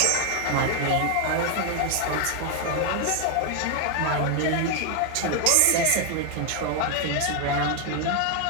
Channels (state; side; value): different; both; correlation 0.01